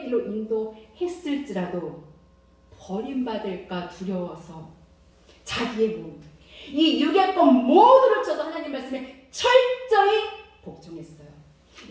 길로 인도했을지라도 버림받을까 두려워서 자기의 몸, 이 육의 것 모두를 쳐서 하나님 말씀에 철저히 복종했어요.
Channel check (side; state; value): both; identical; correlation 1.00